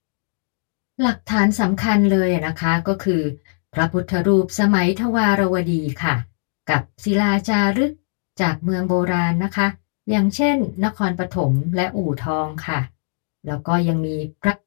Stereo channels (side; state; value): right; silent; 65 dB below the other